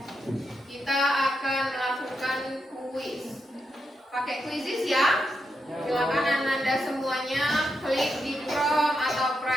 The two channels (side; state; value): both; normal; correlation 0.84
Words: Kita akan melakukan kuis. Pakai quizzes ya. Silakan Anda semuanya klik di Chrome atau